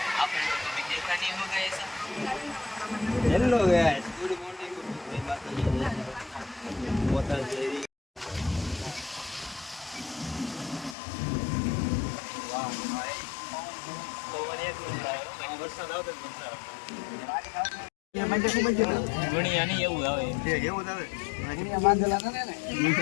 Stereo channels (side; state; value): right; drops out; at 11.0 s